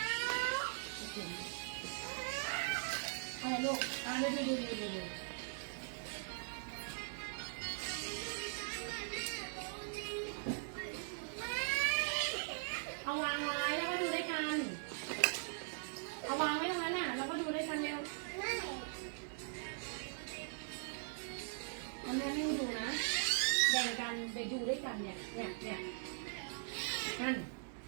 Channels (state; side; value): silent; left; 50 dB below the other